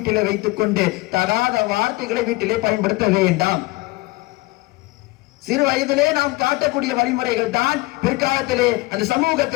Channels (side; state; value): right; quieter; 22.1 dB